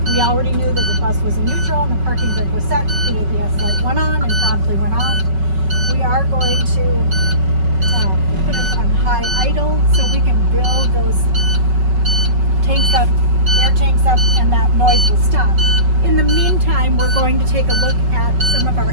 we already knew that the bus was in neutral and the parking brake was set. The ABS light went on and promptly went off. We are going to put it on high idle so we can build those tanks up, air tanks up, and that noise will stop. In the meantime, we're going to take a look at some of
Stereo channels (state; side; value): late; left; 5.3 ms